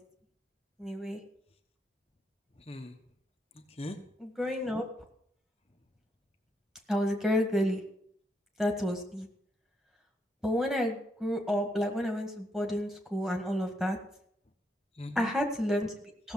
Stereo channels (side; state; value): both; normal; correlation 0.77